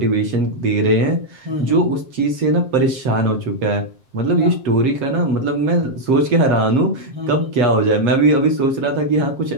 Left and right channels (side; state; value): left; late; 7.5 ms